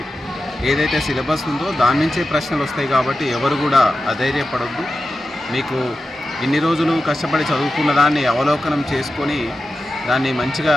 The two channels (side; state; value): both; normal; correlation 0.92